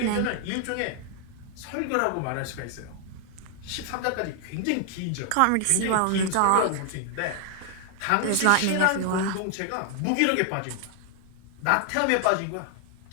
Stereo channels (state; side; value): different; both; correlation 0.00